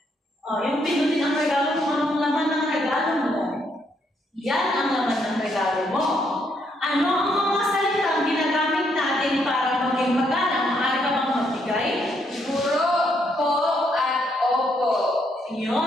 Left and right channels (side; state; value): both; normal; correlation 0.74